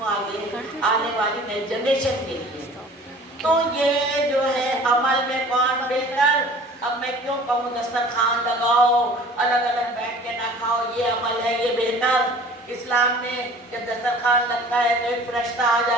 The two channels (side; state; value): both; normal; correlation 0.46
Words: आगे आने वाली नई जनरेशन के लिए। तो ये जो है अमल में कौन बेहतर, अब मैं क्यों कहूँ दस्तरखान लगाओ, अलग अलग बैठ के ना खाओ, ये अमल है ये बेहतर। इस्लाम में जब दस्तरखान लगता है तो एक फरिश्ता आ